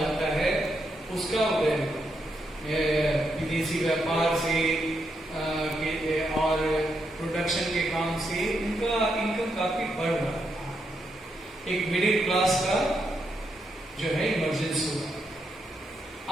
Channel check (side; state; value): both; normal; correlation 0.81